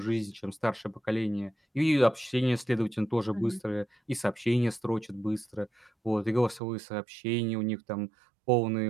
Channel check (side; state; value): left; drops out; at 6.6 s